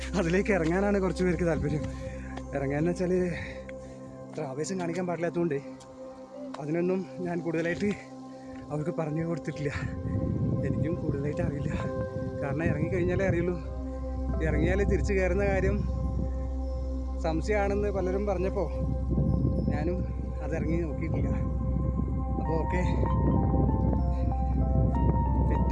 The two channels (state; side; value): identical; both; correlation 1.00